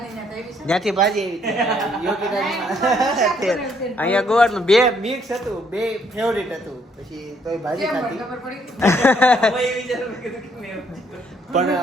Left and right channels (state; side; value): normal; both; correlation 0.68